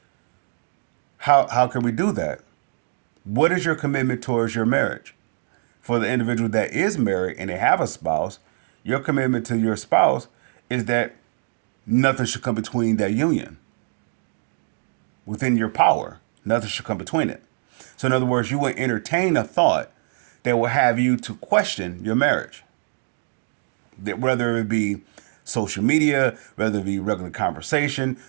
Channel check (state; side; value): silent; left; digital silence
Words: How can we do that? What is your commitment towards your marriage? For the individual that is married and they have a spouse, your commitment to your spouse is that nothing should come between that union. Within your power, nothing should come between it. So in other words, you would entertain a thought that will have you to question your marriage. That whether it be social media, whether it be regular conversation,